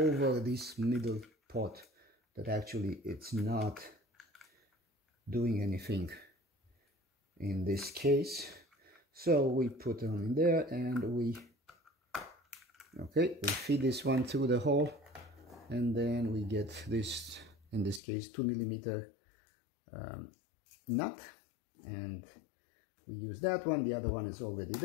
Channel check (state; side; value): drops out; right; at 18.0 s